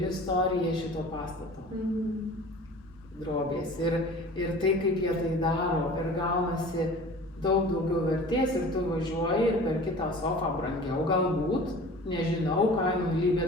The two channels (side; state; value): both; normal; correlation 0.42